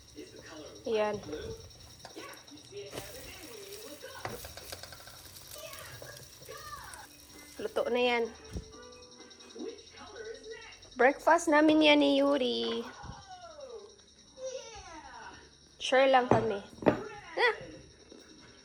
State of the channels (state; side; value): identical; both; correlation 1.00